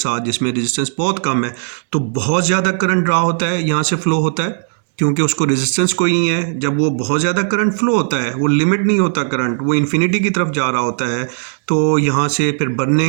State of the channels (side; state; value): left; silent; digital silence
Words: जिसमें रेजिस्टेंस बहुत कम है, तो बहुत ज़्यादा करंट ड्रा होता है, यहाँ से फ्लो होता है क्योंकि उसको रेजिस्टेंस कोई नहीं है। जब वो बहुत ज़्यादा करंट फ्लो होता है, वो लिमिट नहीं होता करंट, वो इन्फिनिटी की तरफ जा रहा होता है, तो यहाँ से फिर